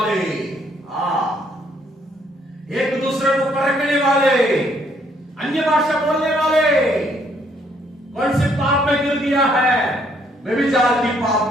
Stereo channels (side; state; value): both; normal; correlation 0.68